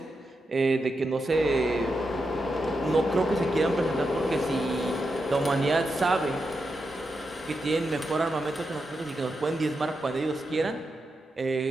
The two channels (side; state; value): both; normal; correlation 0.87